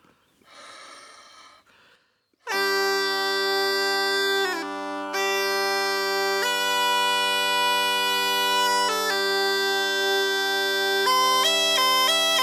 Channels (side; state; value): both; identical; correlation 1.00